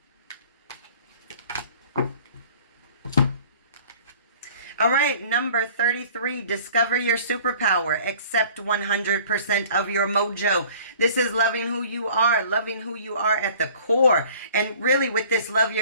All right, number 33, discover your superpower. Accept 100% of your mojo. This is loving who you are at the core. And really with this love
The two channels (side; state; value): both; inverted; correlation -0.50